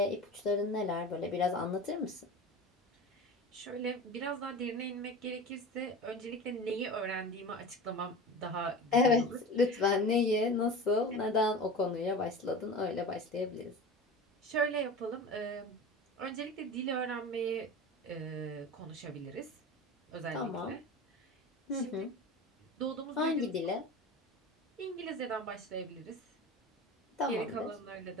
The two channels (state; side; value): normal; both; correlation 0.32